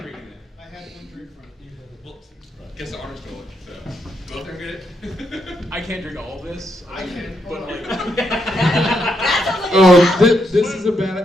it. I had one drink from you. Well, guess the honor stole it. So go up there and get it. I can't drink all of this. I can, but like. Oh, this is a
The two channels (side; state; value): both; normal; correlation 0.79